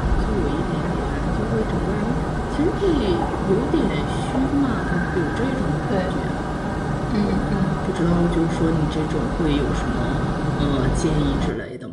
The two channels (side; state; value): both; identical; correlation 1.00